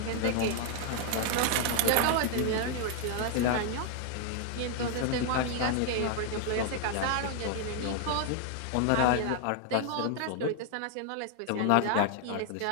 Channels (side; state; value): both; different; correlation 0.00